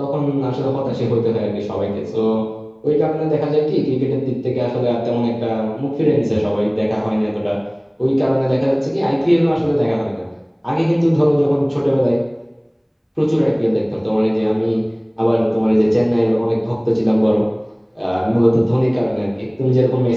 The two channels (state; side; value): identical; both; correlation 1.00